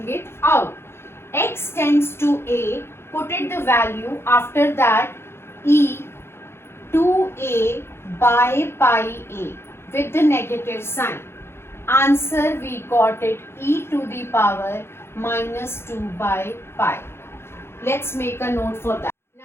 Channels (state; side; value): late; right; 0.12 ms